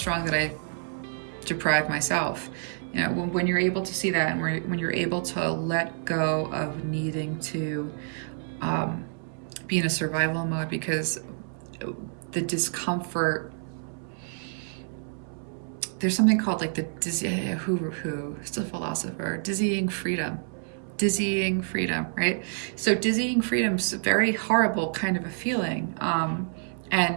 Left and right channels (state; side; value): silent; left; 59 dB below the other